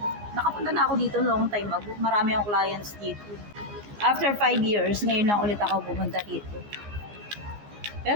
Nakapunta na ako dito long time ago. Marami akong clients dito. After 5 years, ngayon lang ulit ako pumunta dito.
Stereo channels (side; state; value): left; late; 14 ms